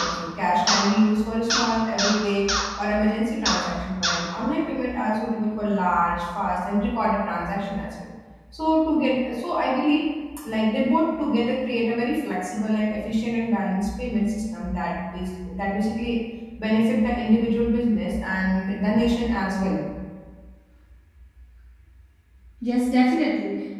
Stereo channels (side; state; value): both; identical; correlation 1.00